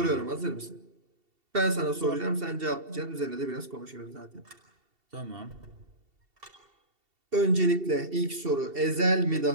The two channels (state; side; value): late; left; 2.7 ms